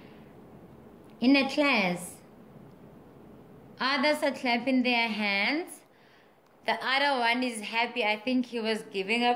in a class. Others are clapping their hands. The other one is happy. I think he was giving a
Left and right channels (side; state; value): both; identical; correlation 1.00